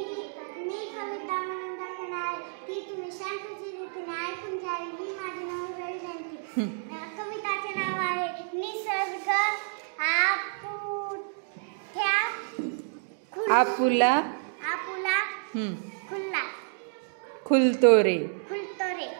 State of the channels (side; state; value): left; silent; digital silence